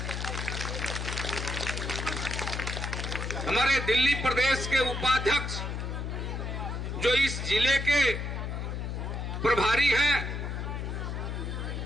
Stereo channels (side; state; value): left; noise; hum, 4 dB below the sound